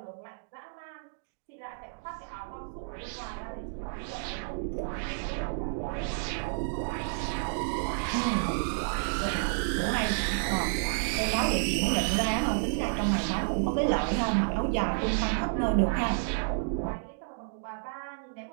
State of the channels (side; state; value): left; silent; digital silence